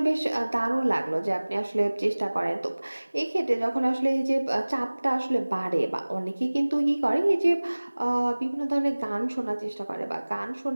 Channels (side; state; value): both; inverted; correlation -1.00